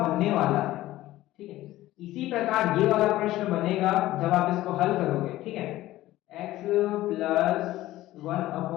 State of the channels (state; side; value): quieter; right; 15.8 dB